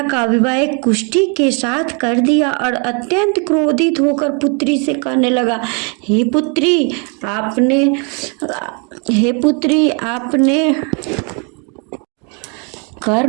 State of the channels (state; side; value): quieter; left; 35.6 dB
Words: का विवाह एक कुष्ठी के साथ कर दिया और अत्यंत क्रोधित होकर पुत्री से कहने लगा, हे पुत्री आपने